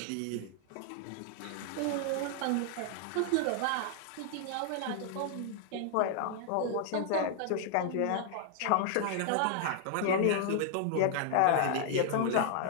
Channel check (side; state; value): both; different; correlation 0.00